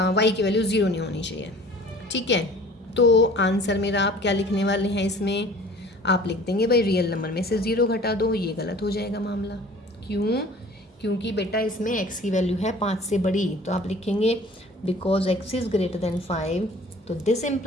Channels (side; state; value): both; normal; correlation 0.47